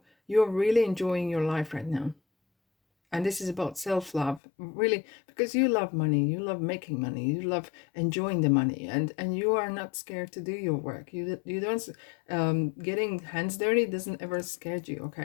you're really enjoying your life right now. And this is about self-love, really, because you love money, you love making money, you love enjoying the money, and you are not scared to do your work. You don't, getting hands dirty doesn't ever scare you,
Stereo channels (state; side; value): drops out; right; at 4.4 s